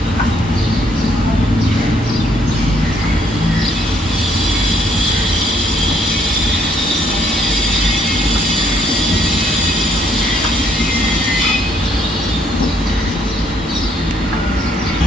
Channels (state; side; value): normal; both; correlation 0.67